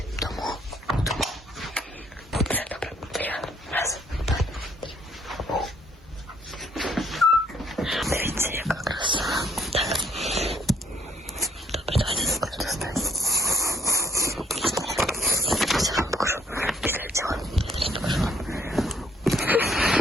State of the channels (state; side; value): normal; both; correlation 0.66